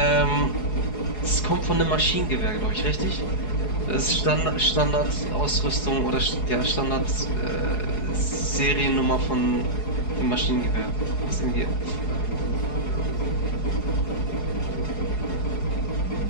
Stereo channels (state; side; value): late; right; 4.8 ms